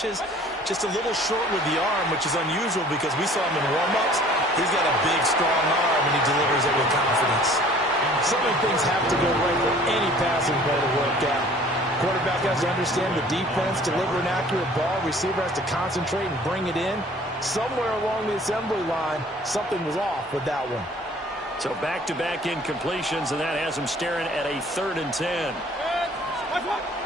Just a little short with the arm, which is unusual because we saw him in warm-ups. He's got a big, strong arm, and he delivers it with confidence. So many things have to go right for any passing play to work out. Quarterback has to understand the defense, deliver an accurate ball. Receiver has to concentrate and bring it in. Somewhere along the assembly line, something was off with that one. So back-to-back incompletions, and that has him staring at a 3rd and 10.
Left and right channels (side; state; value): both; normal; correlation 0.52